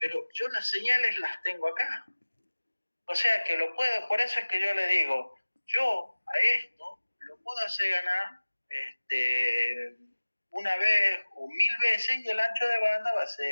yo las señales las tengo acá. O sea que lo puedo, por eso es que yo le digo, yo a esto lo puedo hacer ganar una vez o 1000 veces y el ancho de banda va a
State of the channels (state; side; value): inverted; both; correlation -1.00